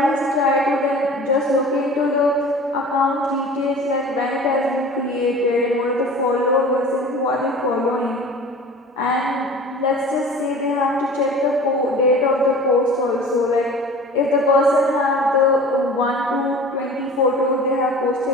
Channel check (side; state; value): both; normal; correlation 0.41